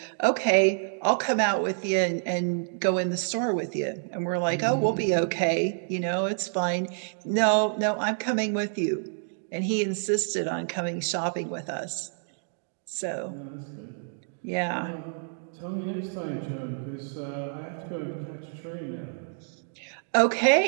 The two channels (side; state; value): left; silent; digital silence